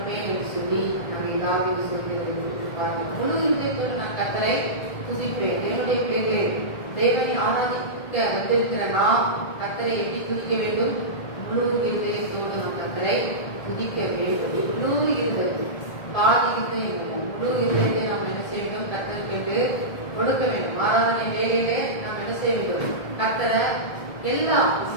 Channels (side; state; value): right; late; 1.7 ms